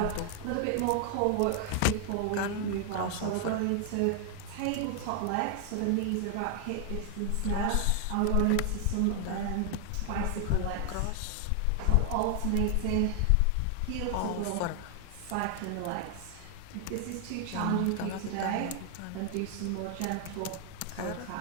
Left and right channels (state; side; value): different; both; correlation 0.00